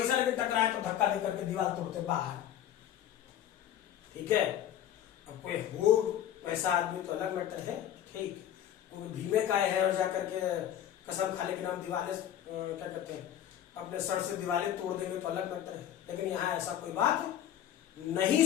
लगे टकराए तो धक्का दे करके दीवार तोड़ते बाहर, ठीक है। अब कोई हो वैसा आदमी तो अलग मैटर है, ठीक, कोई भीमे का है और जाकर के कसम खा ले कि हम दीवारें क्या कहते हैं अपने सर से दीवारें तोड़ देंगे तो अलग मैटर है, लेकिन यहां ऐसा कोई बात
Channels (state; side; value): quieter; right; 10.9 dB